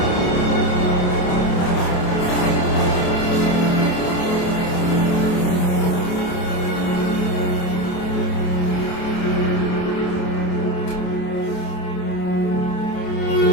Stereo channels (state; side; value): late; right; 28 ms